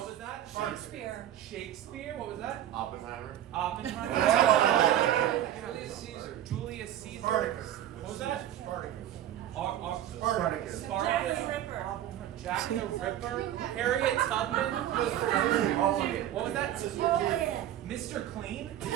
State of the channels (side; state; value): left; quieter; 11.9 dB